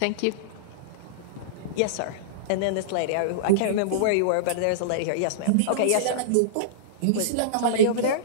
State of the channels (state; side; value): different; both; correlation -0.03